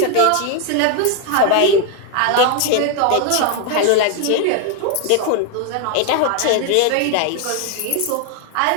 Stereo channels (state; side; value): different; both; correlation 0.01